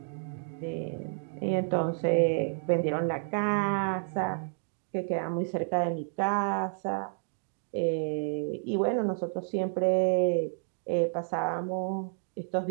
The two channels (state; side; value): silent; left; digital silence